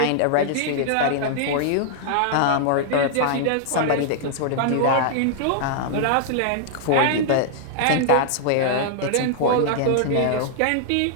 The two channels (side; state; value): both; different; correlation -0.01